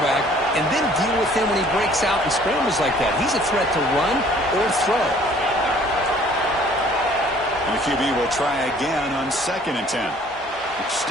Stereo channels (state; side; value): normal; both; correlation 0.55